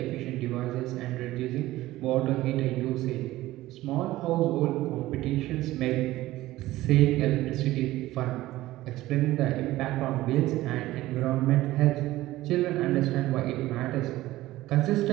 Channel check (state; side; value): quieter; left; 16.6 dB